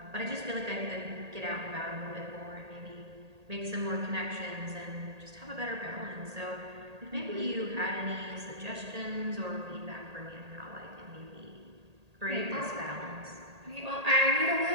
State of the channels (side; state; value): left; late; 1.8 ms